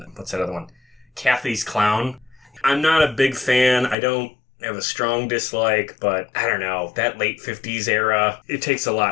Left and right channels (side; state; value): right; drops out; at 4.0 s